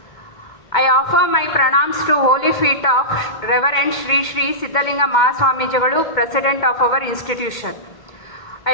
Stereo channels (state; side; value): late; right; 2.2 ms